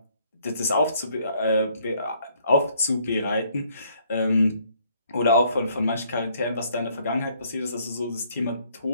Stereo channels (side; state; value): both; inverted; correlation -0.65